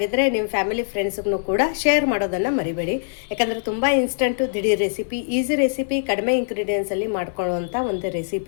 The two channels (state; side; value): silent; right; 64 dB below the other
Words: ನಿಮ್ಮ ಫ್ಯಾಮಿಲಿ ಫ್ರೆಂಡ್ಸ್ಗೂ ಕೂಡ ಶೇರ್ ಮಾಡೋದನ್ನು ಮರಿಬೇಡಿ. ಯಾಕಂದರೆ ತುಂಬ ಇನ್ಸ್ಟಂಟು, ದಿಢೀರ್ ರೆಸಿಪಿ, ಈಸಿ ರೆಸಿಪಿ, ಕಡಿಮೆ ಇಂಗ್ರೀಡಿಯೆಂಟ್ಸಲ್ಲಿ ಮಾಡ್ಕೊಳ್ಳುವಂಥ ಒಂದು